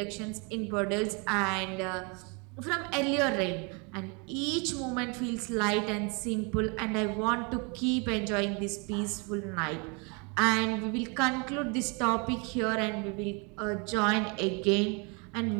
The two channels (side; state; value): left; quieter; 32.5 dB